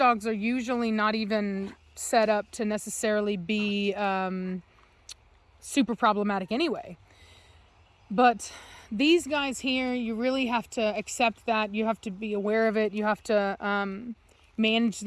are usually not even set up to necessarily be super problematic anyway. But these guys here, you really have to accept that. You have to be aware of it. You have to manage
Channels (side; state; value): both; identical; correlation 1.00